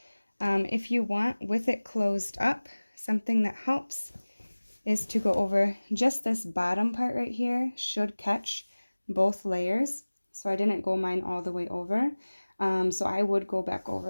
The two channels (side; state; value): both; inverted; correlation -1.00